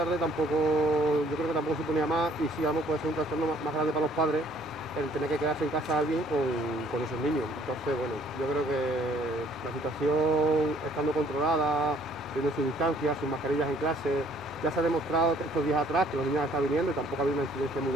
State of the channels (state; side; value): normal; both; correlation 0.60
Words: tampoco, yo creo que tampoco suponía más, y si vamos puede ser un trastorno más grande para los padres el tener que quedarse en casa alguien con esos niños. Entonces, bueno, yo creo que la situación estando controlada, teniendo sus distancias, sus mascarillas en clase, ya se ha demostrado que estos días atrás que los niños están viniendo y tampoco ha habido una incidencia muy